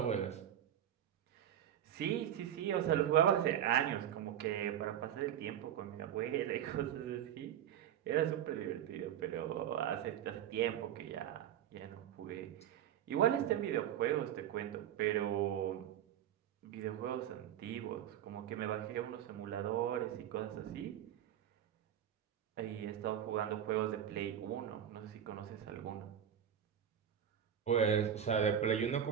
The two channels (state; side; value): quieter; left; 10.0 dB